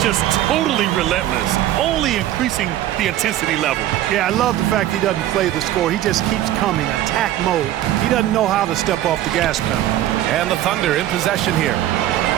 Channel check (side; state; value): left; quieter; 13.2 dB